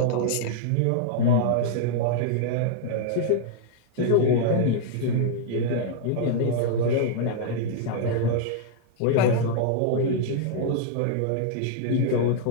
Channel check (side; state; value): both; different; correlation -0.01